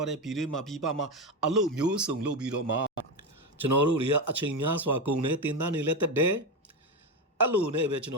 းတဲ့ပြည်တွင်းမှာပြည်ပမှာအလုပ်မျိုးစုံလုပ်ပြီးတော့မှကျွန်တော်တို့တွေကအချိန်များစွာကုန်တယ်တင်တန်းနေလဲတက်တယ်အဲ့လိုနဲ့ပဲကျွန်တ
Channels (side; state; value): both; normal; correlation 0.14